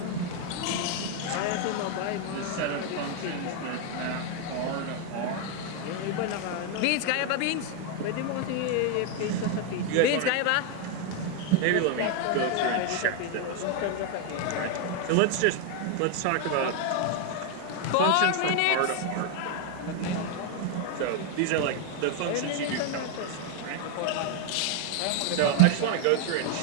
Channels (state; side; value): different; both; correlation 0.00